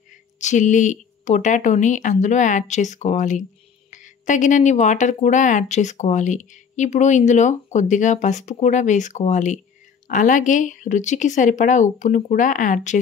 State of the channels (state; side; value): quieter; right; 6.6 dB